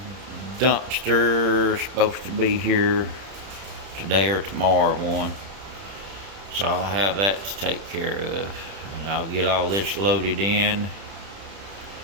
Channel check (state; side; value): late; left; 31 ms